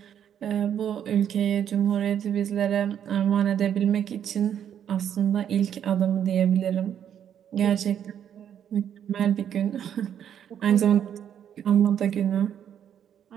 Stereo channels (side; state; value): left; quieter; 9.3 dB